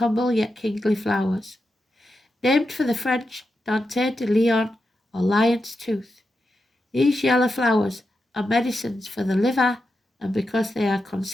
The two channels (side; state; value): both; normal; correlation 0.88